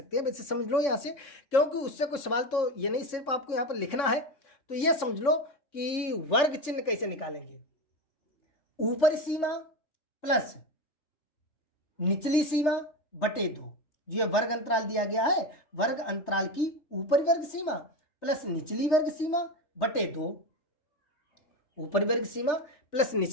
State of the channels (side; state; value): right; late; 3.3 ms